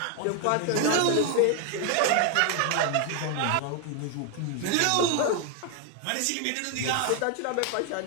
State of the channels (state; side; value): different; both; correlation 0.01